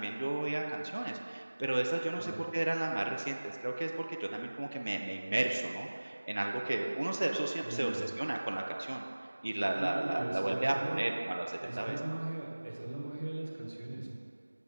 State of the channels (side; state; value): both; inverted; correlation -1.00